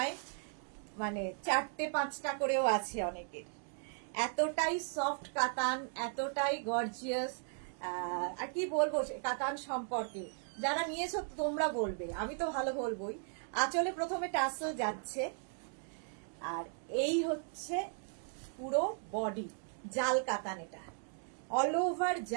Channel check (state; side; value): silent; left; 53 dB below the other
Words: মানে 4-5টা করেও আছে অনেকের। এতটাই সফট কাতান, এতটাই গর্জিয়াস। আর কি বলবো কাতান সম্পর্কে, যারা নিয়েছো তোমরা বলবে, আমি তো ভালো বলবোই। আঁচলে প্রথমে টাসেল যাচ্ছে, আর এই হচ্ছে পুরো বডি জাল কাতান। এটা অল ওভার